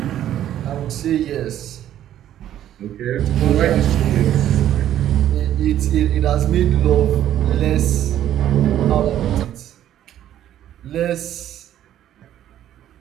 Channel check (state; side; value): quieter; left; 11.6 dB